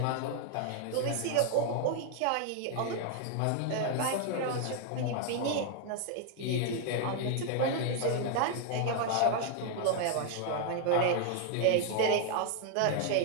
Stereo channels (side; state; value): both; different; correlation 0.00